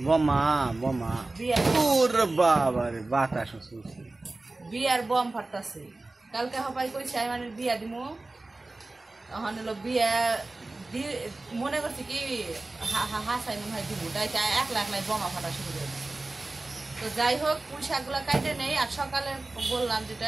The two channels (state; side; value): quieter; left; 3.1 dB